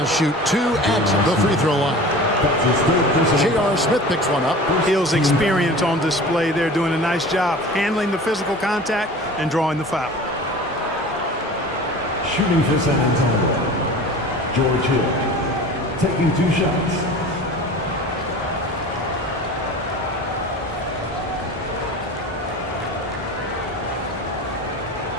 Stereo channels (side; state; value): both; normal; correlation 0.39